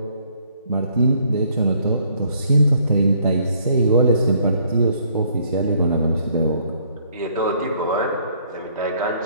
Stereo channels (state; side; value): inverted; both; correlation -0.64